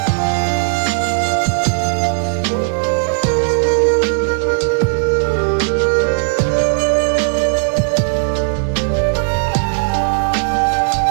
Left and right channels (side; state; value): left; silent; 69 dB below the other